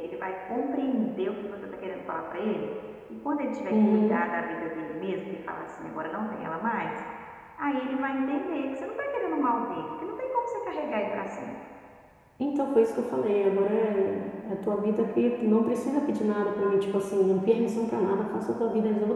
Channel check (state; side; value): identical; both; correlation 1.00